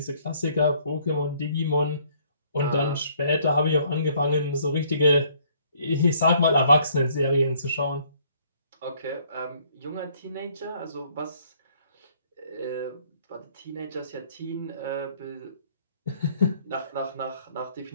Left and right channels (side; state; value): both; inverted; correlation -0.63